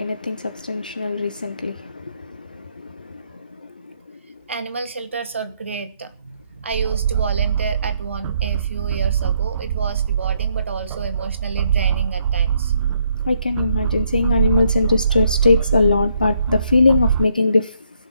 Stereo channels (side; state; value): both; inverted; correlation -0.72